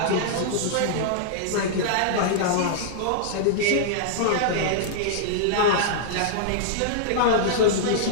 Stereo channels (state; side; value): different; both; correlation -0.02